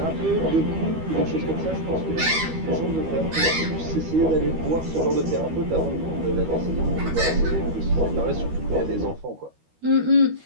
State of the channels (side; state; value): left; late; 13 ms